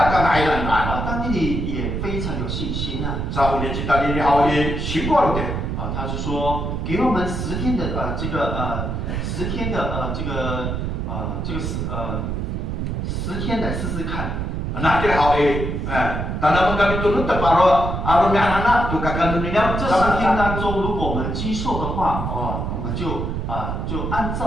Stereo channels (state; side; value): noise; right; rumble, 2 dB below the sound